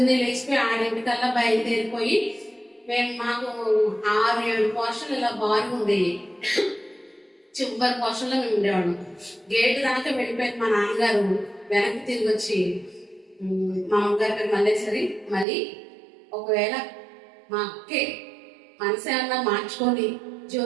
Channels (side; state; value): left; drops out; at 15.5 s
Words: లేచిపోయి 6 బయలుదేరిపోయి మాకు 6-7 పోర్షన్లు ఇలా బాగా ఉండేవి. చివరి పోర్షన్లో మేము ఉండేవాళ్ళం. గేటు దాకా వెళ్ళిపోయింది మా నాన్నగారు. వెనక్కి తిరిగి వచ్చి మా అమ్మగారి పేరు మల్లేశ్వరి, మళ్ళీ ఒకవేళ మా అక్కే మనసు ఏమన్నా మార్చుకొని